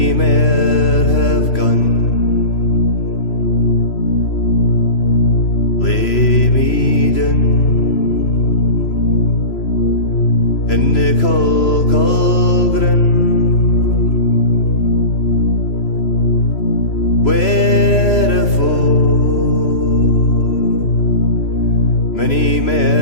mair have gone. Lay me down in the caul groon, wherefore many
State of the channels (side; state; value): right; late; 3.0 ms